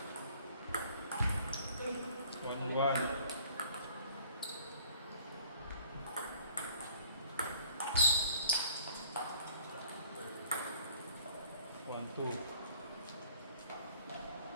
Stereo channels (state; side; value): inverted; both; correlation -0.54